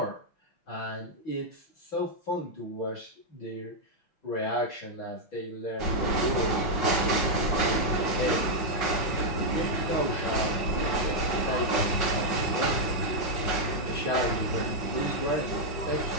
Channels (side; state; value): right; late; 5.5 ms